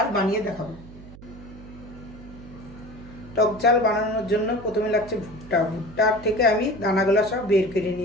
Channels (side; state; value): right; noise; hum, 17 dB below the sound